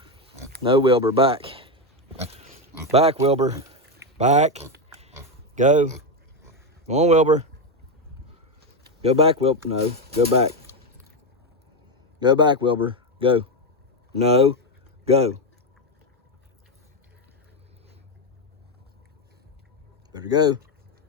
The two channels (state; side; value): normal; both; correlation 0.09